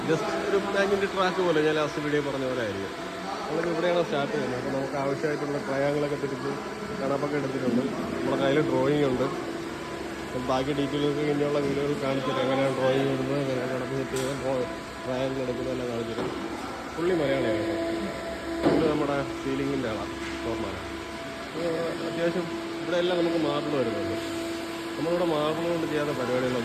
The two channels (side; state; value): both; identical; correlation 1.00